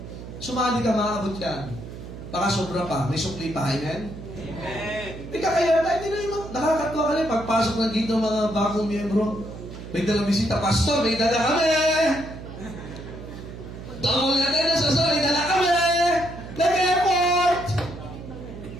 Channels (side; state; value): right; noise; hum, 12 dB below the sound